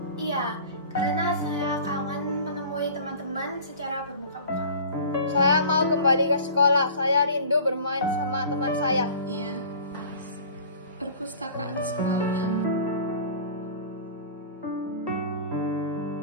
Iya, karena saya kangen menemui teman-teman secara bermuka-muka. Saya mau kembali ke sekolah. Saya rindu bermain sama teman saya. Iya, perpustakaan sekolah.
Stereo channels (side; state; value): both; inverted; correlation -0.42